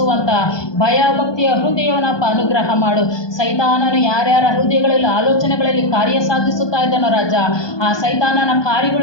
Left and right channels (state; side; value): late; right; 1.2 ms